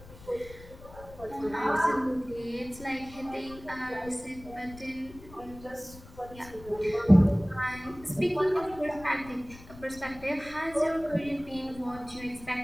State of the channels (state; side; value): noise; left; rumble, 18 dB below the sound